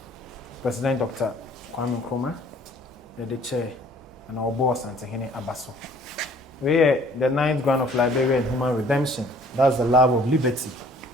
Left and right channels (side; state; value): both; normal; correlation 0.56